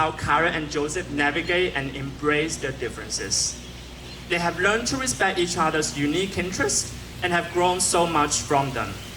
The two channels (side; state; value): both; identical; correlation 1.00